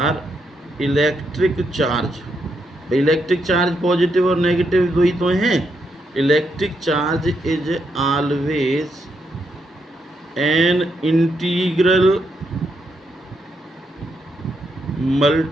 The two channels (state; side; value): normal; both; correlation 0.79